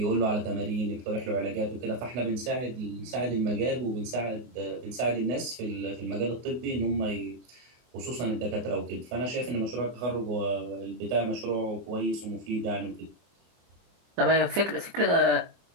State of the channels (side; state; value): left; late; 24 ms